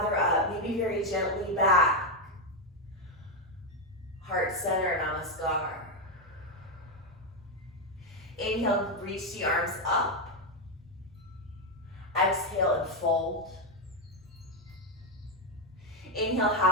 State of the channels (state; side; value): normal; both; correlation 0.05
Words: up, maybe very gently back. Heart center, namaskar. Inhale, reach the arms up. Exhale and fold. Inhale,